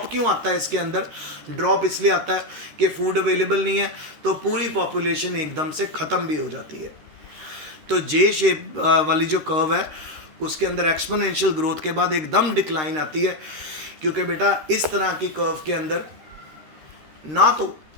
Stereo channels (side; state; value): left; late; 13 ms